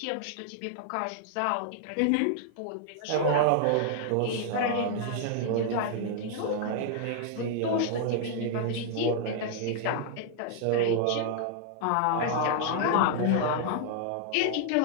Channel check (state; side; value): different; both; correlation -0.01